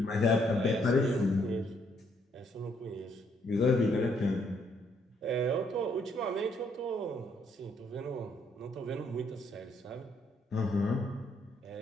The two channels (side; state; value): both; normal; correlation 0.70